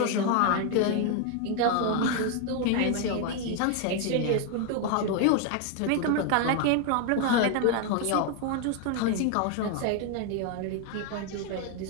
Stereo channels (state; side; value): different; both; correlation 0.01